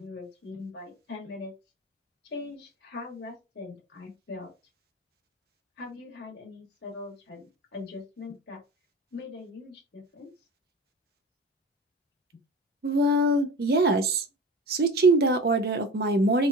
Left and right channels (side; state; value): both; normal; correlation 0.34